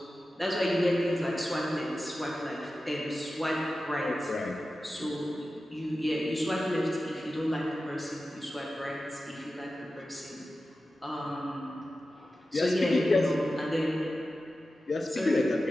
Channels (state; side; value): normal; both; correlation 0.93